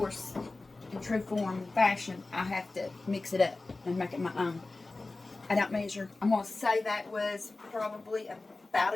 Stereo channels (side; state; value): right; quieter; 3.3 dB